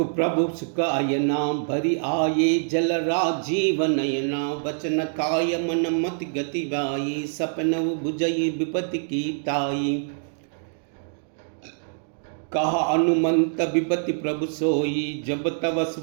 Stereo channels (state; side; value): silent; left; digital silence